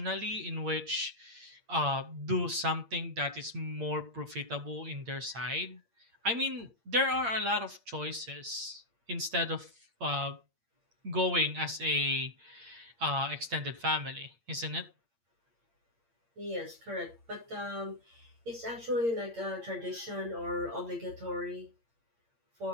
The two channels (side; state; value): left; late; 8.7 ms